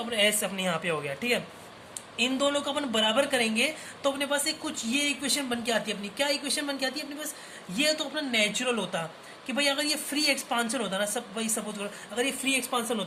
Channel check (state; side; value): identical; both; correlation 1.00